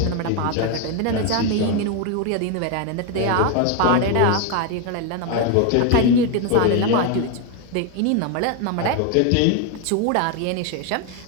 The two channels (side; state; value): both; different; correlation 0.01